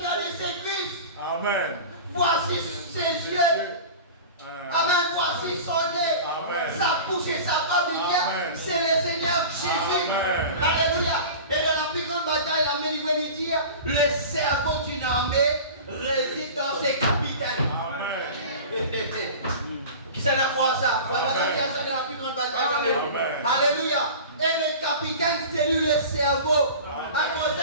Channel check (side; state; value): both; inverted; correlation -0.35